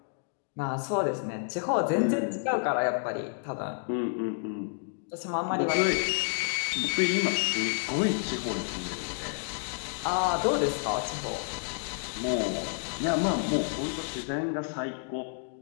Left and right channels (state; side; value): silent; right; 58 dB below the other